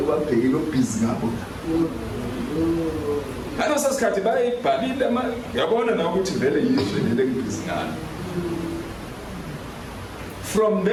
babhekile obhizi ngabo. Ngalo sesikhathi bayibhalile yabona na ukuthi vele yizwe lele ngibhizi ngalo. From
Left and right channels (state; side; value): identical; both; correlation 1.00